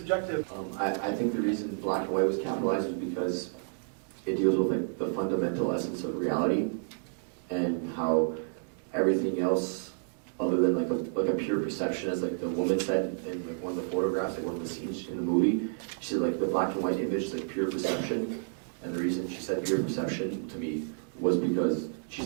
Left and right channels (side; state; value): left; silent; digital silence